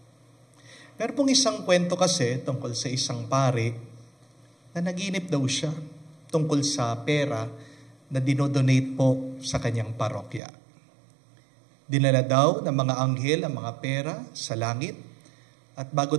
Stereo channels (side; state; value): left; drops out; at 10.4 s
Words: Meron pong isang kwento kasi tungkol sa isang pare na naginip daw siya tungkol sa pera na dinodonate po sa kanyang parokya. Dinala daw ng mga anghel ang mga pera sa langit at bago